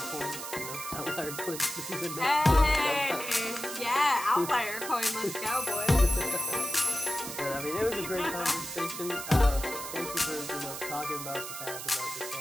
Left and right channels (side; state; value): right; noise; hiss, 8 dB below the sound